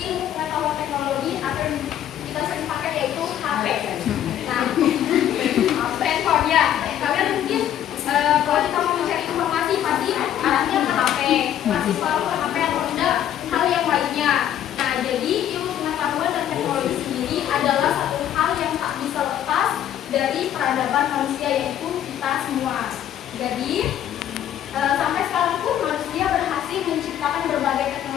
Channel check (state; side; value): quieter; right; 10.9 dB